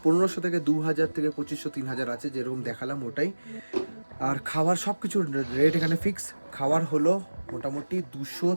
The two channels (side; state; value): both; inverted; correlation -1.00